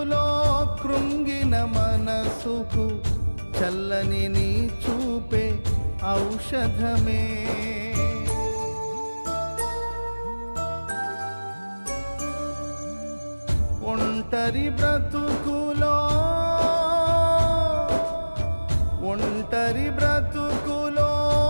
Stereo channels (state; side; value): inverted; both; correlation -1.00